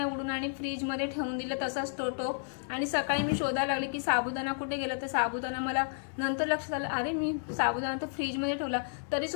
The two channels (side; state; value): right; silent; digital silence